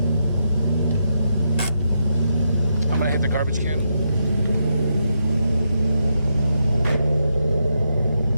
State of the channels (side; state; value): both; inverted; correlation -0.83